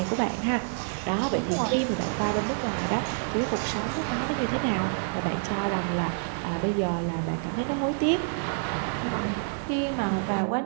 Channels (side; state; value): left; silent; digital silence